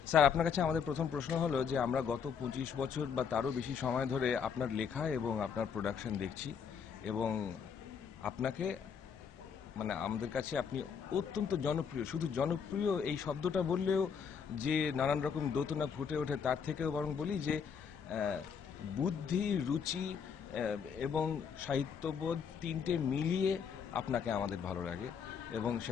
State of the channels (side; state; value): right; quieter; 6.9 dB